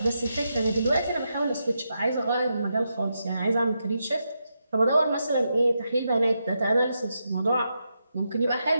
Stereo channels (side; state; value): both; inverted; correlation -0.84